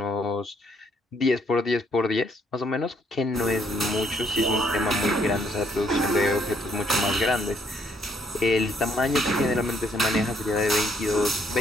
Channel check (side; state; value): both; normal; correlation 0.69